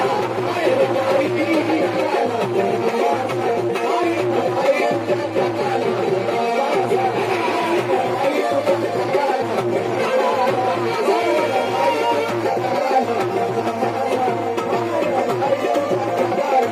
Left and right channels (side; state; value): both; identical; correlation 1.00